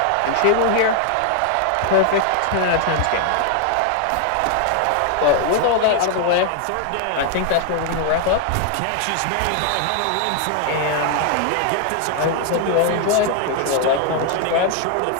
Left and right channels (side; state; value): both; different; correlation 0.00